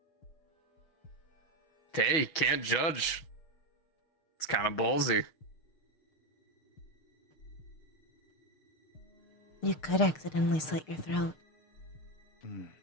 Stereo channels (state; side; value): late; right; 6.3 ms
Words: Hey, can't judge. It's kind of ballsy. You could accidentally slit your throat.